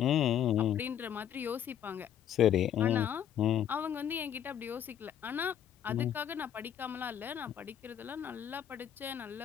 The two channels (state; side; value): quieter; right; 9.7 dB